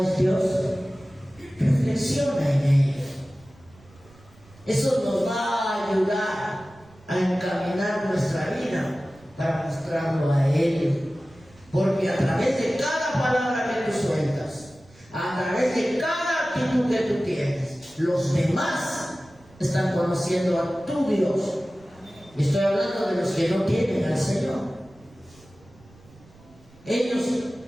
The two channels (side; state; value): right; noise; rumble, 26 dB below the sound